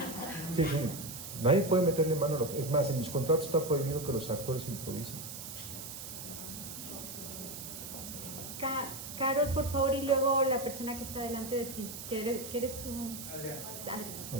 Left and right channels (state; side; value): noise; right; hiss, 9 dB below the sound